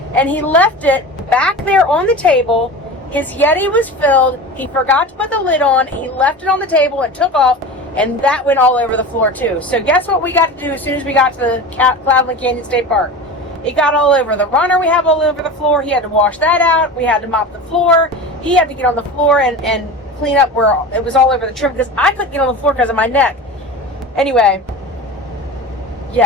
he left it back there on the table. His Yeti was filled. He forgot to put the lid on. He left it on the table and took off, and that went all over the floor too. So guess what we got to do as soon as we got to the Cloudland Canyon State Park? It got all over the runner. We have all over the floor. He had to wash that out. We had to mop the floor. He had to get on the floor and clean up where it was all over the trim, because I couldn't get on the floor because of my neck. Anyway,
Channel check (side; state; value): both; normal; correlation 0.31